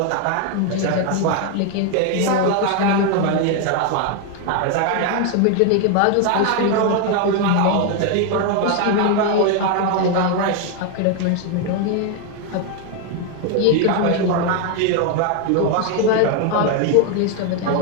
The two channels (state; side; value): different; both; correlation 0.01